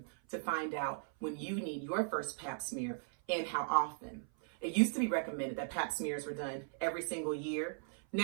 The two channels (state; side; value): silent; left; 53 dB below the other